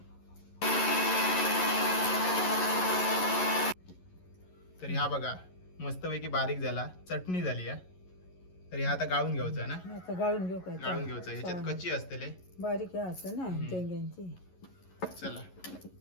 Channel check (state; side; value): late; right; 11 ms